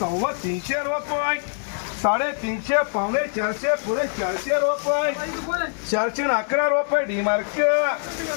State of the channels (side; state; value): right; silent; digital silence